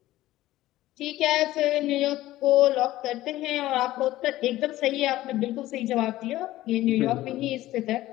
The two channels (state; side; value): quieter; right; 15.8 dB